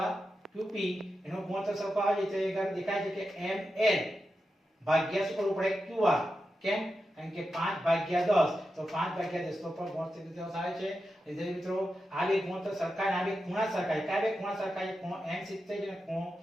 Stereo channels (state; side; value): normal; both; correlation 0.89